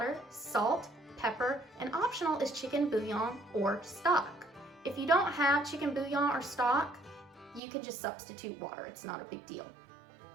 salt, pepper, and optional is chicken bouillon or stock. If you don't have chicken bouillon or stock, you can just substitute water. It's not a big deal.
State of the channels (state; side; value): drops out; left; at 7.6 s